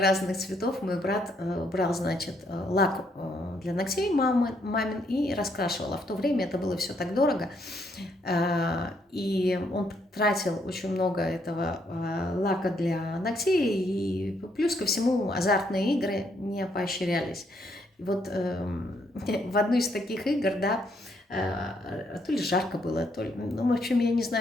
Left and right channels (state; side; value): normal; both; correlation 0.72